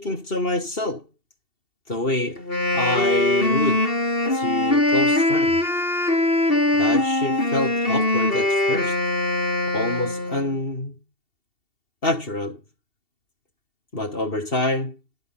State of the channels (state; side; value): late; right; 2.7 ms